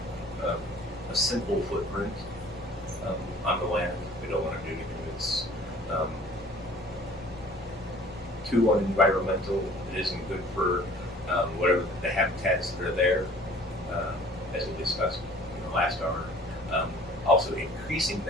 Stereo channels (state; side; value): normal; both; correlation 0.50